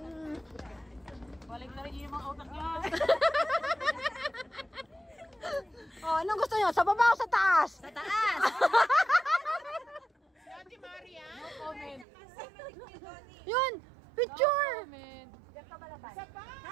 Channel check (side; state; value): left; drops out; at 12.1 s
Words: Balik na rin yung mga utak niya. Oh, anong gusto niyo? Sa baba o sa taas? Sa taas! Si Ate Maria? No comment. Yun, picture. Isa pa!